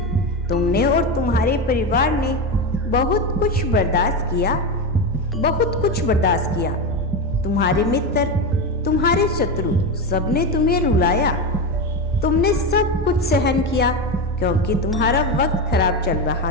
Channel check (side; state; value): both; normal; correlation 0.16